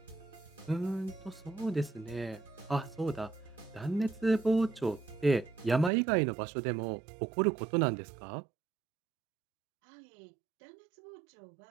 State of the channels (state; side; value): drops out; left; at 5.9 s